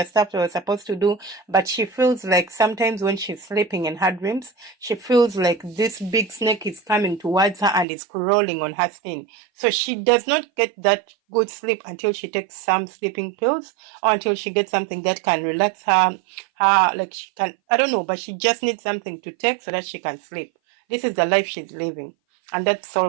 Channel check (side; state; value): left; drops out; at 7.9 s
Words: stuff they were supposed to do, but she feels like sometimes when she's sleeping in her dreams, she feels like this big snake is coming towards her and is crawling on her skin. So she does not get that good sleep until she takes some sleeping pills or until she gets something that can relax her, like she can, I don't know, but she just needs something to take so that she can sleep. This is the life she's living. And that's